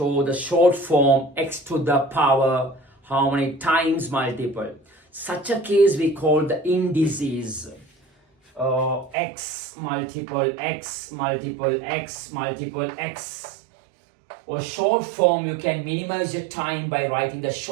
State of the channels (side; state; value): left; drops out; at 9.2 s